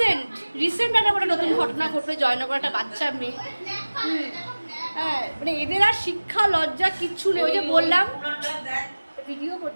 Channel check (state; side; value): inverted; both; correlation -1.00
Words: রিসেন্ট একটা নতুন ঘটনা ঘটলো, জয়নগর একটা বাচ্চা মেয়ে। হ্যাঁ, মানে এদের আর শিক্ষা লজ্জা কিচ্ছু নেই। ওই যে বললাম, ভিডিও